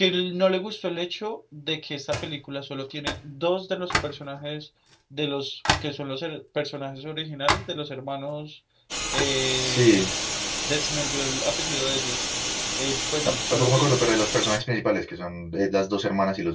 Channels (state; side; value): identical; both; correlation 1.00